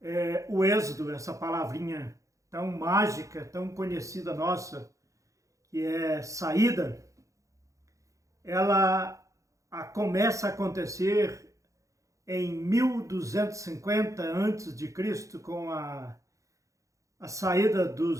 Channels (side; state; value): left; late; 0.15 ms